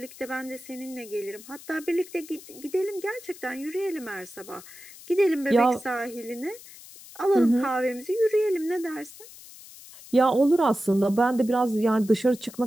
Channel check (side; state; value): left; noise; hiss, 18 dB below the sound